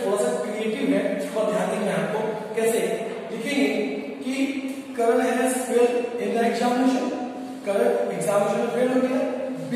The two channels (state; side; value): identical; both; correlation 1.00